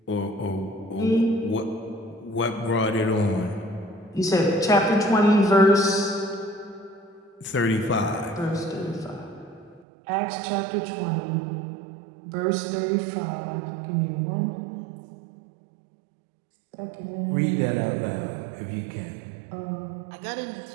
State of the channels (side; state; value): left; drops out; at 9.9 s